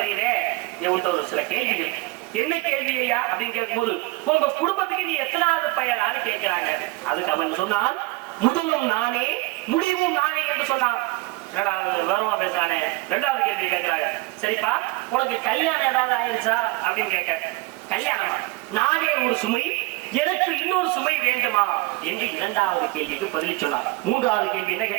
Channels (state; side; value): quieter; left; 21.8 dB